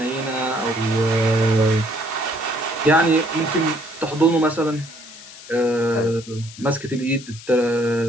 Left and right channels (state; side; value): noise; left; hiss, 17 dB below the sound